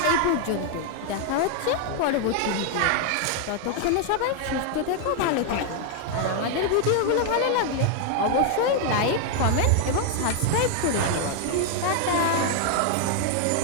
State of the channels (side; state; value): both; different; correlation 0.00